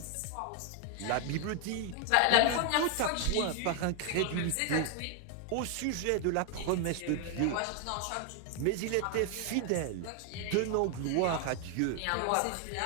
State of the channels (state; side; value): different; both; correlation 0.00